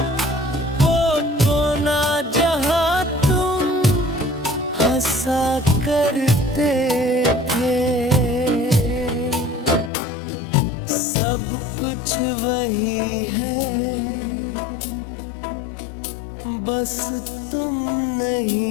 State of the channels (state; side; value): drops out; right; at 9.9 s